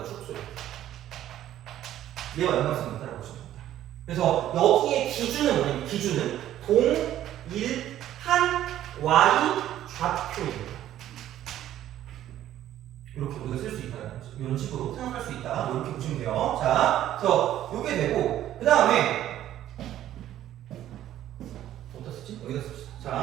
축소. 얘와 연관성이 있다고 보시면 됩니다. 그래서 여기에 기준은 뭐냐면 기준은 동일한 y 좌표입니다. 이렇게 우리가 쓸 수 있다는 거죠. 이런 식으로 생각할 수 있다. 이렇게 보시면 돼요. 자, 그래서 이게 되고 그 다음에 어디다 쓰지? 여기다 씁시다. 자,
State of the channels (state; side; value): quieter; left; 12.4 dB